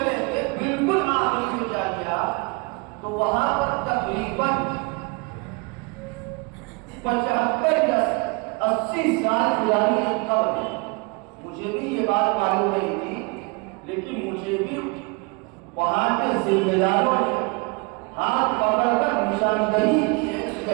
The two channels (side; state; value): left; quieter; 29.3 dB